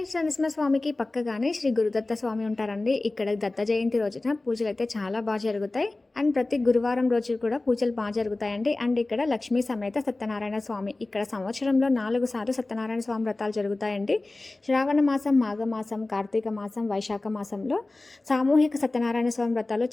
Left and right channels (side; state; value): right; quieter; 3.0 dB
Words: నరసింహస్వామికి పక్కగానే శ్రీ గురుదత్త స్వామి ఉంటారండి. ఇక్కడ దత్త జయంతి రోజున పూజలు అయితే చాలా బాగా జరుగుతాయి. అండ్ ప్రతి గురువారం రోజు కూడా పూజలు బాగా జరుగుతాయండి. అండ్ ఇక్కడ లక్ష్మీ సమేత సత్యనారాయణ స్వామి, ఇక్కడ సంవత్సరంలో 4 సార్లు సత్యనారాయణ స్వామి వ్రతాలు జరుగుతాయండి. శ్రావణ మాసం, మాఘమాసం, కార్తీక మాసం, వైశాఖ మాసంలో సామూహిక సత్యనారాయణ స్వామి వ్రతాలు